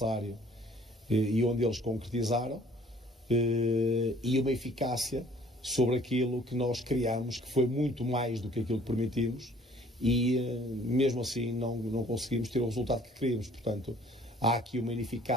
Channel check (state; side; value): normal; both; correlation 0.56